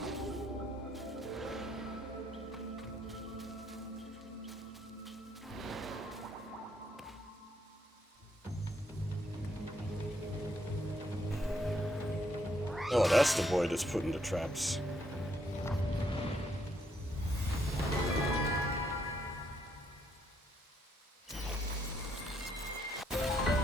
Oh, that's the boy that's put into traps.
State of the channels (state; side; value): normal; both; correlation 0.74